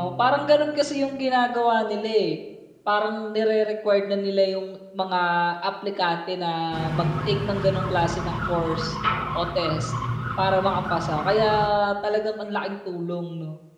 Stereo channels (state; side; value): identical; both; correlation 1.00